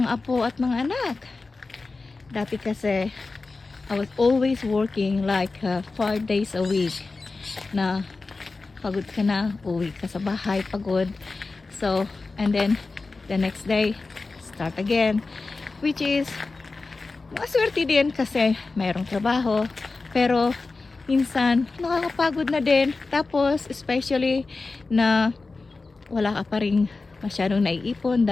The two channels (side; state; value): right; quieter; 3.8 dB